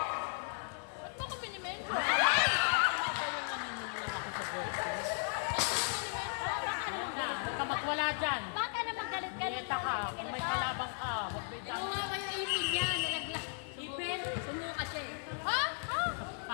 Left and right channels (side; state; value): right; silent; 54 dB below the other